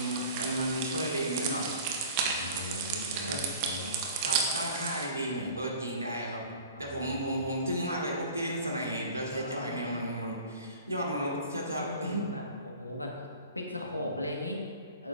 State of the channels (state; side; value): inverted; both; correlation -0.42